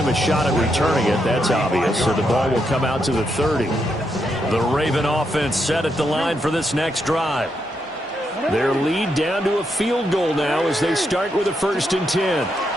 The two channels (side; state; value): both; normal; correlation 0.81